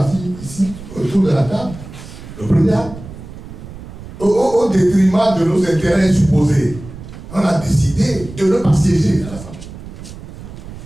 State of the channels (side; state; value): right; noise; rumble, 14 dB below the sound